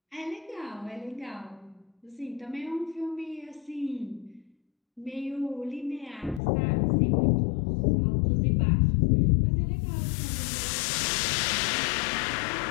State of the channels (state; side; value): drops out; right; at 6.4 s